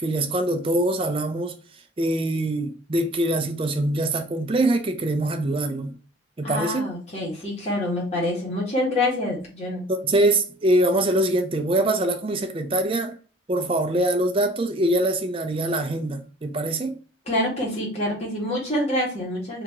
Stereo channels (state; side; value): normal; both; correlation 0.49